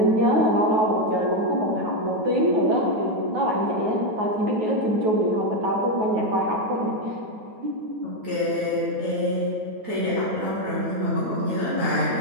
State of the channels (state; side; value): late; left; 9.4 ms